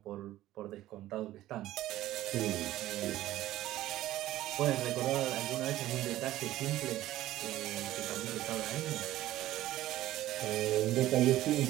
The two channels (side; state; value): left; quieter; 14.9 dB